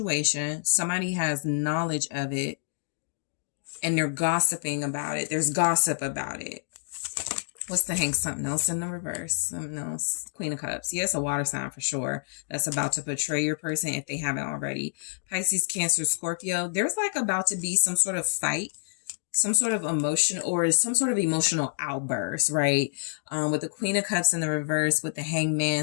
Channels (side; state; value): right; silent; digital silence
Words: Somebody has knowledge of it and they're gossiping about it. There's gossip about it. What's the Hanged? Something else in the reverse. Something else. Queen of Cups. Yes, a water sign for sure. That's about to betray your person if they haven't already. Pisces, Cancer, Scorpio. There's like about to be some sort of fight, some sort of emotion or some sort of emotional outburst, right? With the Queen of Cups in the reverse, with the Hanged